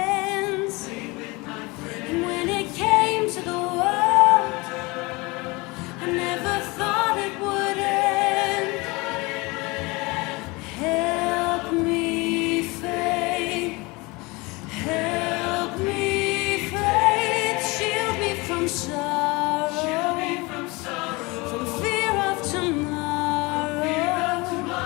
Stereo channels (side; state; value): right; quieter; 24.9 dB